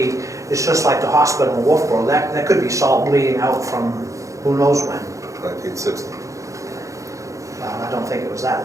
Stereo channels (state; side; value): late; left; 0.15 ms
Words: it's just like the hospital in Wolfboro, that could be salt bleeding out from who knows when. 1960. Well, I don't think it was that